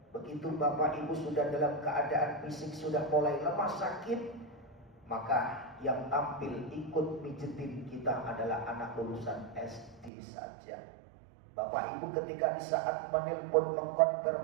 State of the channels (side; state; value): left; drops out; at 10.1 s